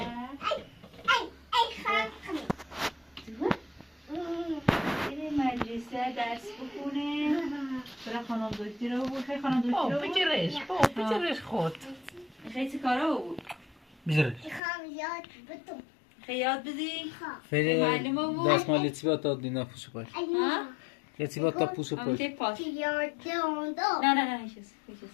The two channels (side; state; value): right; drops out; at 14.6 s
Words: بره مدرسه درس بخونه برای خانم دکتر رو بود خیلی خانم دکتر رو بود بجرش خود خیلی چه کاره بود بجرش خیلی یاد بدی فعلی معلمه بود دست مال یتیبات داد دینا پوشو پاش ها؟ یتیبات تا پوشو اما پاش تی پاس نه هیچ چیز